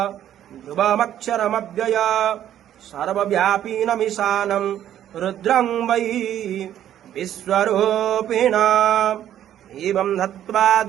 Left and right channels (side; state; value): left; quieter; 11.2 dB